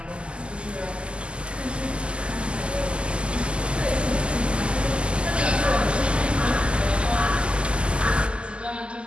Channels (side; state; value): left; late; 0.052 ms